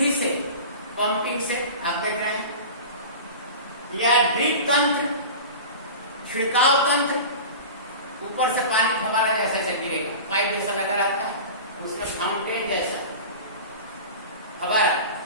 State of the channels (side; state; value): both; inverted; correlation -0.33